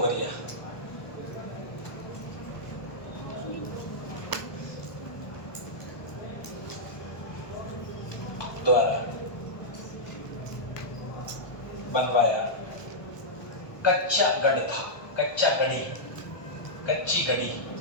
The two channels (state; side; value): late; right; 1.2 ms